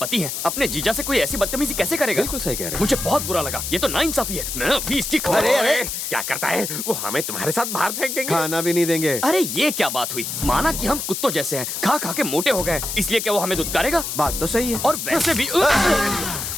हैं, अपने जीजा से कोई ऐसी बदतमीजी कैसे करेगा? बिल्कुल सही कह रहे हैं। मुझे बहुत बुरा लगा, ये तो नाइंसाफी है। मैं अभी इसकी खबर। अरे क्या करता है वो? हमें तुम्हारे साथ बाहर फेंक देंगे। खाना भी नहीं देंगे। अरे ये क्या बात हुई? माना कि हम कुत्तों जैसे हैं, खा खा के मोटे हो गए, इसलिए क्या वो हमें दुत्कारेगा? बात तो सही है। और वैसे भी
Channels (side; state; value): left; noise; hiss, 4 dB below the sound